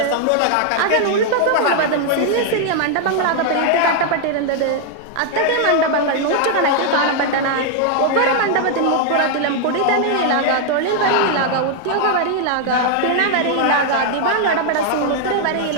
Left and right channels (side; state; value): both; different; correlation 0.00